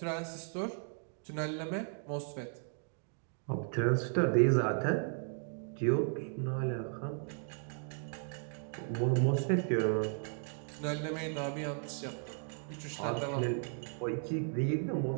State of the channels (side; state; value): left; silent; 54 dB below the other